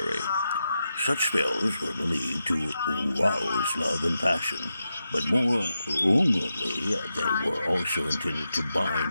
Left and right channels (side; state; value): both; inverted; correlation -0.88